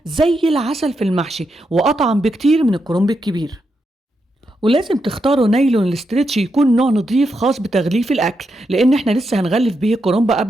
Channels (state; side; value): normal; both; correlation 0.84